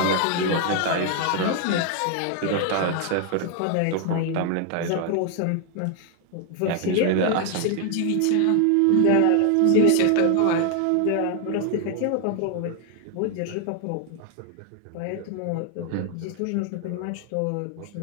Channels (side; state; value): both; different; correlation 0.00